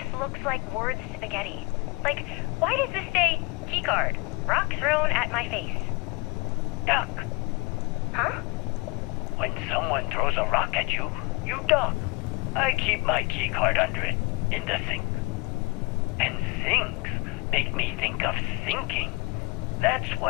looks like word spaghetti. Like, why does this say keycard? Rock thrown at my face. Duck. Huh? When someone throws a rock at you, you duck. I keep my keycard under it, in the sink. And sinks make me think of sinking. That's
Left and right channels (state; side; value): quieter; right; 27.6 dB